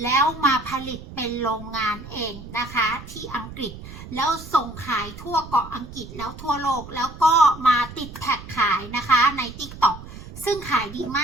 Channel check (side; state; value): right; noise; rumble, 14 dB below the sound